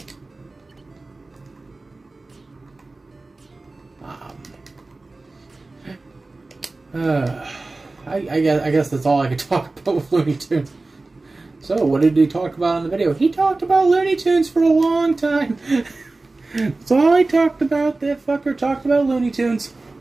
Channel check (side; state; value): left; quieter; 3.3 dB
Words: I guess that's all I could talk about with Looney Tunes. So, what did he talk about in the video? He talked about Looney Tunes for a long time. That's all he talked about. That fucker talked about Looney Tunes.